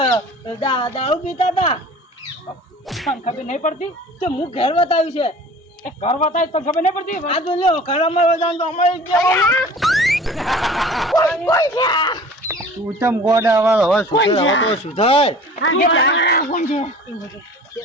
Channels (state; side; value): normal; both; correlation 0.44